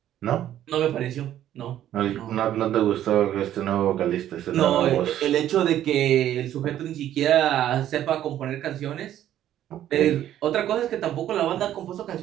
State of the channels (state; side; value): quieter; left; 11.8 dB